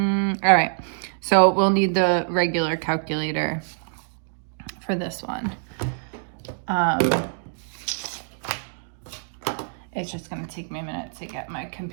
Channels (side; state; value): left; silent; digital silence